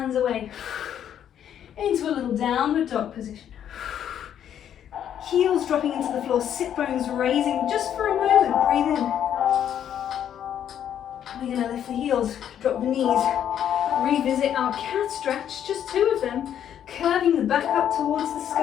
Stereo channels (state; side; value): quieter; right; 9.7 dB